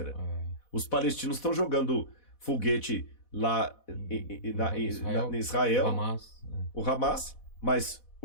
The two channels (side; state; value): right; late; 4.1 ms